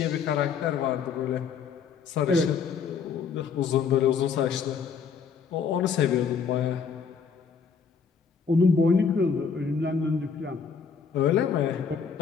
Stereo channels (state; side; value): quieter; right; 6.1 dB